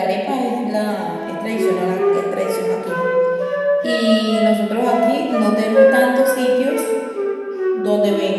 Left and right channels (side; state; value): both; identical; correlation 1.00